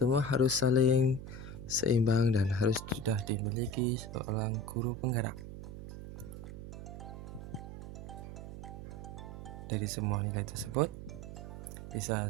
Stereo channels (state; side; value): noise; right; hum, 10 dB below the sound